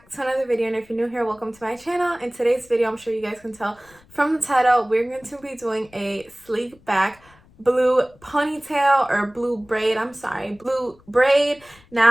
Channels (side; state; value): left; noise; rumble, 28 dB below the sound